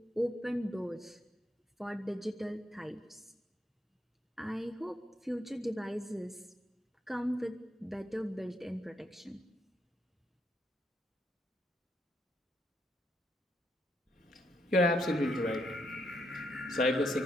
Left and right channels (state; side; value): normal; both; correlation 0.77